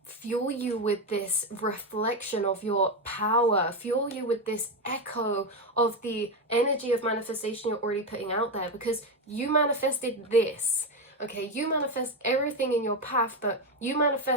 fuel you with this reflection of your power, fuel you with this echo of the energy of manifestation you're already putting out there, because you manifested this. Okay, you manifest everything in your path, but you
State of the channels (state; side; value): normal; both; correlation 0.11